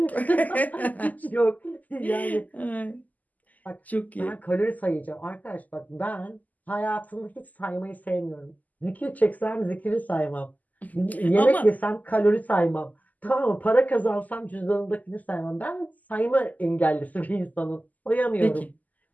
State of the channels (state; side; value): late; right; 0.080 ms